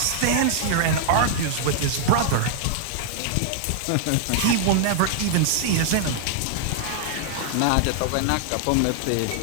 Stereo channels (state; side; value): different; both; correlation -0.01